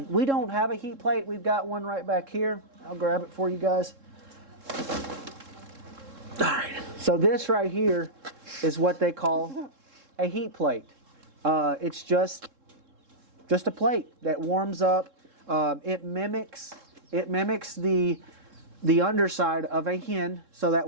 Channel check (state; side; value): late; left; 3.7 ms